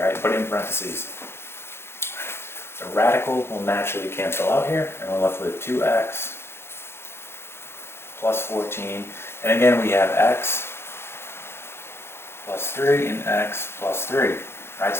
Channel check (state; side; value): late; right; 0.12 ms